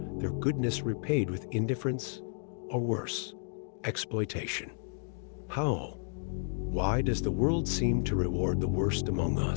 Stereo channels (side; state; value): right; silent; digital silence